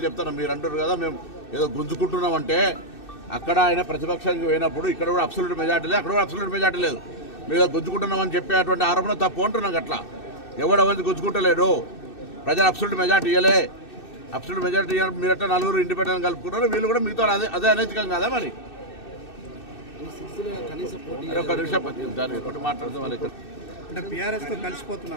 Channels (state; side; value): late; right; 2.6 ms